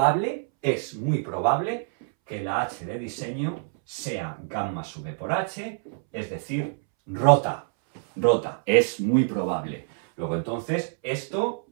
que la h de diseño sea gamma sub b por h, es decir, rota. Rota, es muy probable. Luego entonces, esto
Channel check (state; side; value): silent; left; 61 dB below the other